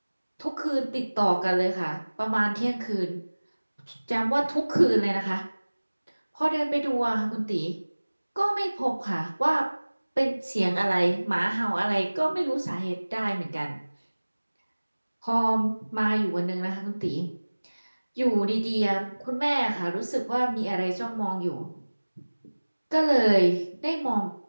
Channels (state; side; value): inverted; both; correlation -1.00